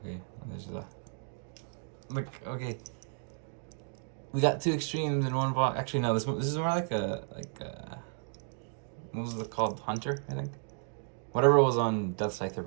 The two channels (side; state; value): left; silent; 56 dB below the other